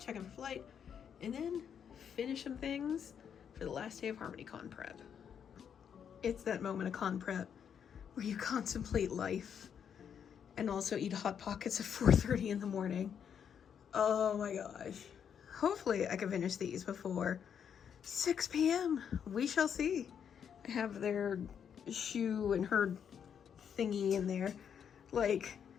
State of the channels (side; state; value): right; quieter; 8.0 dB